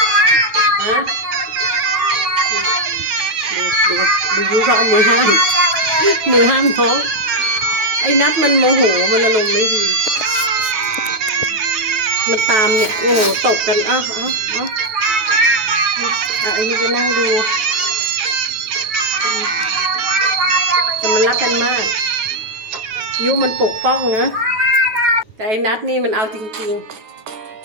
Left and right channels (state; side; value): late; left; 9.3 ms